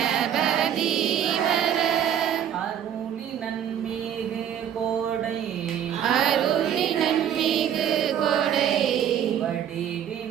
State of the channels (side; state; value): left; quieter; 9.5 dB